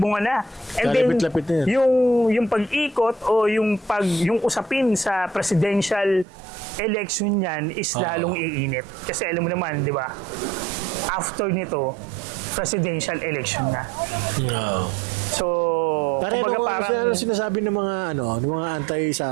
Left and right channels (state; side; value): drops out; left; at 6.2 s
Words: na. And then Kalapit-lapit na yan. yung pag-ikot o yung usapin sa presidential election niyan is lalong iinit. Kasi alam mo naman, di ba? After nito, presidential election na. No. So, Kumbaga parang sinasabi ng mga